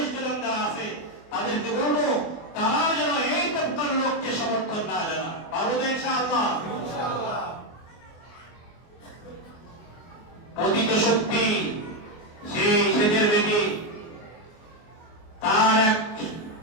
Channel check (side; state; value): right; late; 24 ms